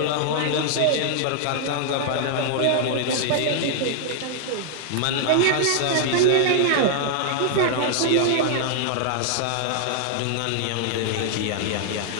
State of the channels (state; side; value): different; both; correlation -0.01